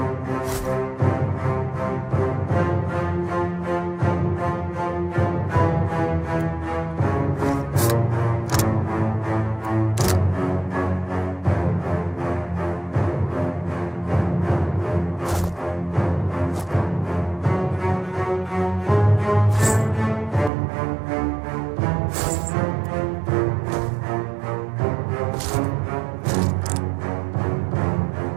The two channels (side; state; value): left; drops out; at 20.5 s